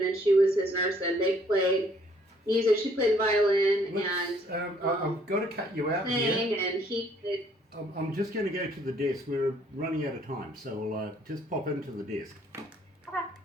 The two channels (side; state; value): both; normal; correlation 0.63